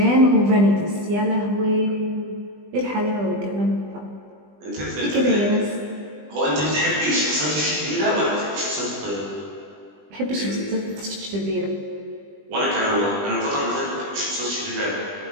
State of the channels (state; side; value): late; left; 20 ms